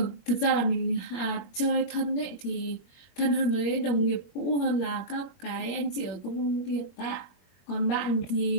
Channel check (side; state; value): right; late; 21 ms